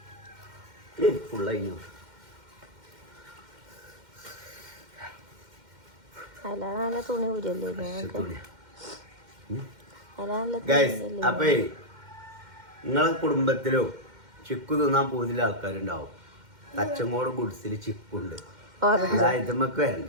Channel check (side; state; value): left; late; 2.1 ms